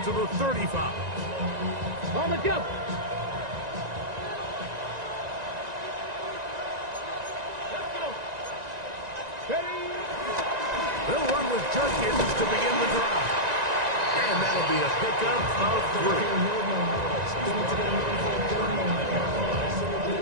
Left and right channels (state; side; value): late; left; 1.9 ms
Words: to the 35. On the jump. Let's go. Ready. They'll run with Judkins to begin the drive. And that'll be a pickup of 3.